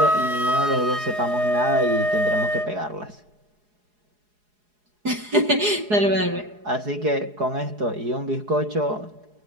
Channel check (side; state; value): left; late; 4.8 ms